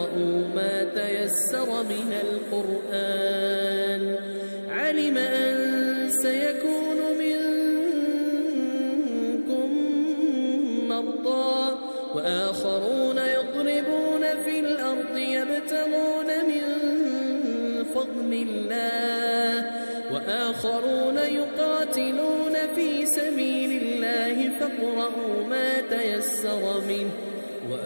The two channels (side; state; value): both; inverted; correlation -1.00